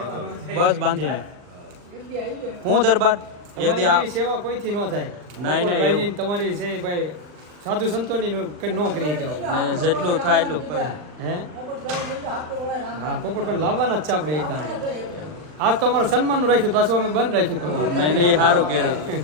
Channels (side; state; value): left; late; 39 ms